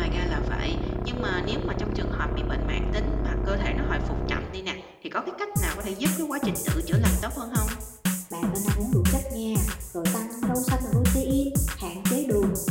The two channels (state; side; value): identical; both; correlation 1.00